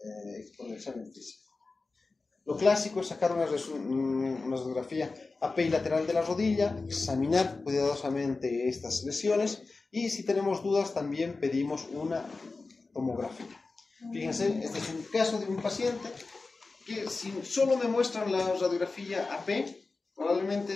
el examen físico. Lo clásico es sacar una radiografía API lateral de la rodilla, examinar cuidadosamente estas lesiones y si tenemos dudas también pedimos una tomografía. Fíjense, este es un caso de un paciente que si solo me muestran la radiografía AP,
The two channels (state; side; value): quieter; right; 3.8 dB